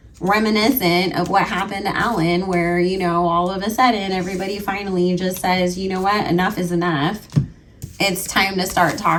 reminiscent of what happened to Ellen, where, you know, all of a sudden everybody finally just says, you know what, enough is enough. It's time to start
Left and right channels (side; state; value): both; identical; correlation 1.00